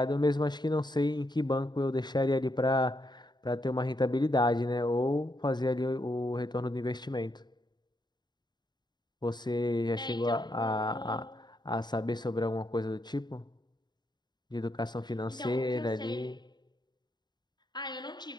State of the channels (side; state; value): right; late; 0.21 ms